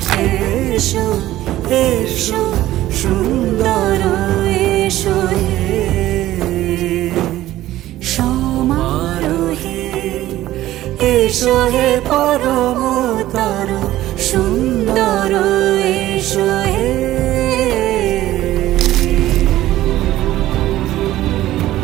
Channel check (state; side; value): quieter; left; 14.8 dB